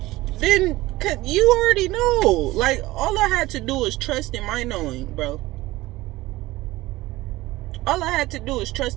then you already know. Like, all I had to do was trust in my knowing, bro. All I had to do is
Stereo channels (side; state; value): left; quieter; 18.4 dB